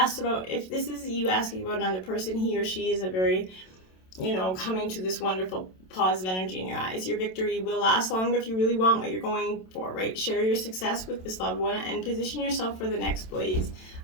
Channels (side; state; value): right; late; 27 ms